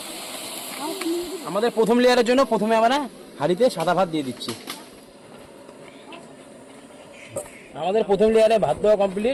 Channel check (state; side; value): identical; both; correlation 1.00